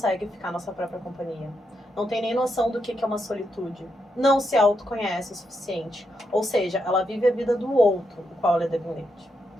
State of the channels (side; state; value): both; normal; correlation 0.82